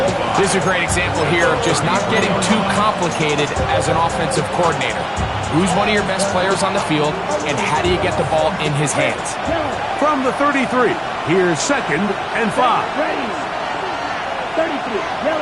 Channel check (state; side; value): identical; both; correlation 1.00